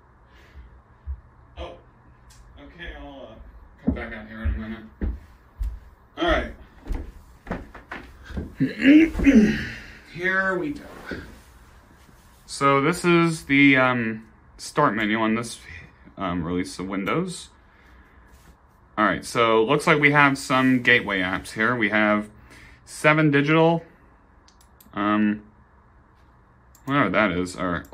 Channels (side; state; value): both; identical; correlation 1.00